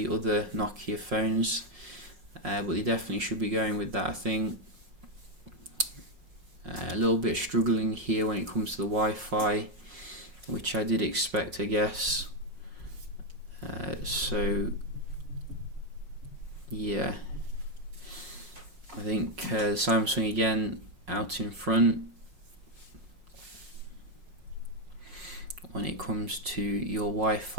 other Nokia phones, but they definitely should be going with that, I think. A little bit struggling here when it comes to the Wi-Fi, which I did expect, I guess. So yeah, I think Samsung again out in front when it comes to your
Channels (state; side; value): late; left; 5.5 ms